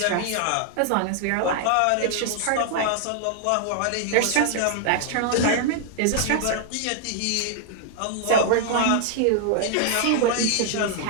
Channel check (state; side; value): different; both; correlation 0.00